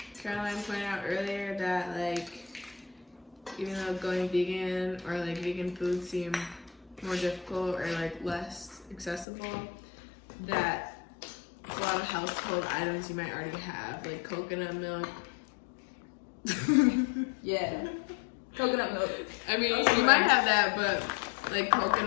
Caroline pointed out earlier that like, even though going vegan or like vegan food seem more difficult or like less accessible, that a lot of household items you might already have, like coconut milk. Yeah. Coconut milk. I mean, you might have that, but like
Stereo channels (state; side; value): drops out; right; at 9.2 s